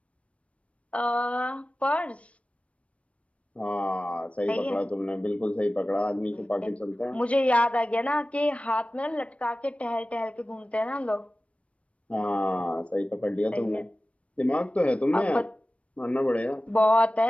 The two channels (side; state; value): right; late; 0.063 ms